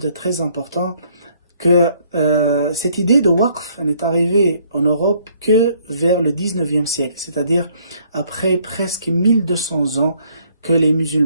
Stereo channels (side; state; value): both; inverted; correlation -0.65